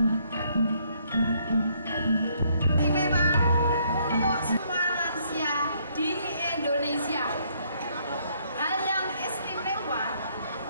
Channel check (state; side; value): inverted; both; correlation -0.69